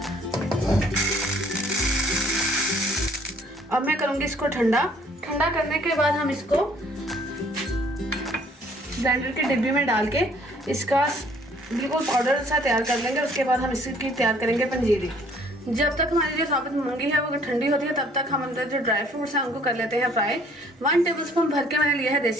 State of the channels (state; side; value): normal; both; correlation 0.59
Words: अब मैं करूँगी इसको ठंडा करने के बाद हम इसको ग्राइंडर के डिब्बे में डाल के इसका बिल्कुल पाउडर सा तैयार कर लेंगे। उसके बाद हम इसकी तैयार करेंगे पंजीरी। जब तक हमारी जो साबित मूंगी है वो ठंडी होती है तब तक हम अंदर जो ड्राई फ्रूट्स हैं उनको कर लेते हैं फ्राई। 1 टेबलस्पून भर के मैंने लिया है